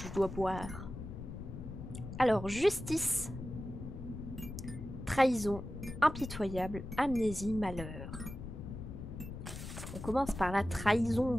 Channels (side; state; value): left; noise; rumble, 9 dB below the sound